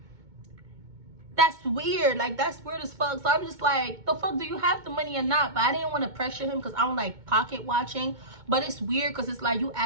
That's weird. Like, that's weird as fuck. So I'm just like, the fuck, do you have the money or not? But I didn't want to pressure him, because I don't like pocket watching. But it's weird, because it's like, you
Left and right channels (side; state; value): left; late; 2.2 ms